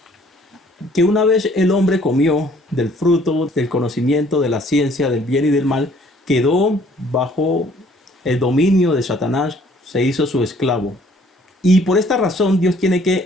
una vez el hombre comió del fruto del conocimiento de la ciencia del bien y del mal, quedó bajo el dominio de Satanás, se hizo su esclavo. Y por esta razón Dios tiene que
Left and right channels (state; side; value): normal; both; correlation 0.59